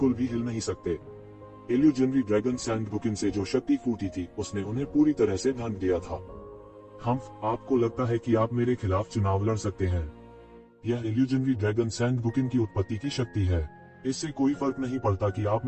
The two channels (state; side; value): identical; both; correlation 1.00